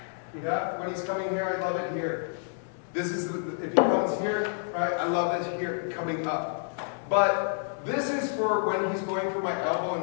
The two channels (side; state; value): right; silent; digital silence